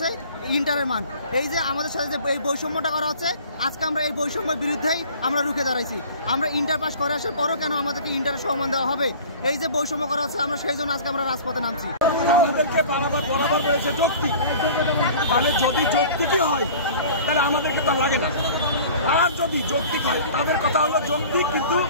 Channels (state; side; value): inverted; both; correlation -0.43